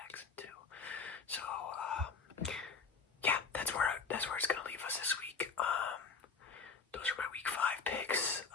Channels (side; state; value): right; quieter; 4.9 dB